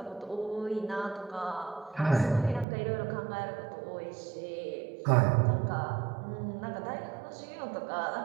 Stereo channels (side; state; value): left; drops out; at 2.7 s